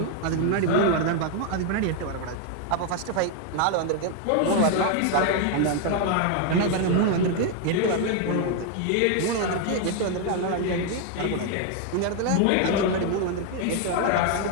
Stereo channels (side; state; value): both; different; correlation 0.01